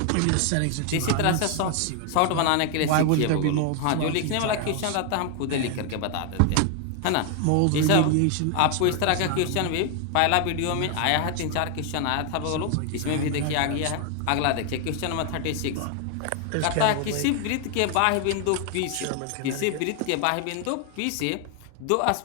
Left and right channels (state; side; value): different; both; correlation 0.00